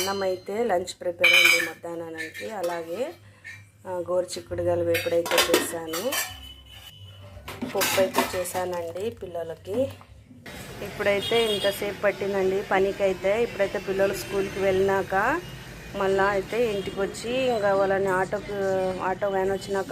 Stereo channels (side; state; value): both; identical; correlation 1.00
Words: అయితే లంచ్ ప్రిపేర్ అయింది మధ్యాహ్నానికి. అలాగే గోరుచిక్కుడుగాయలు వేపుడైతే చేశాను. పప్పు అయితే చేశానండి పిల్లలకి. ఇప్పుడైతే ఇంతసేపు పట్టిందండి పనికైతే. ఇప్పుడైతే పిల్లలు స్కూల్కి వెళ్ళినాక మళ్ళీ అయితే ఇంటికి వచ్చి ఇంకా వాళ్ళని ఆటో వ్యాన్ వచ్చినాక